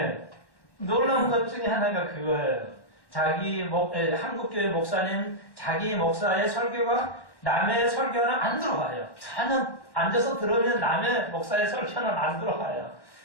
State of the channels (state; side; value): late; right; 1.1 ms